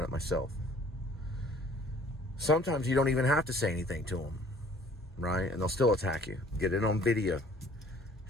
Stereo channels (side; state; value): both; normal; correlation 0.54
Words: it myself. Sometimes you don't even have to say anything to them, right? And they'll still attack you. Get it on video.